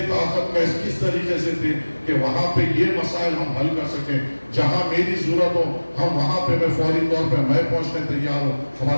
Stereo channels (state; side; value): inverted; both; correlation -1.00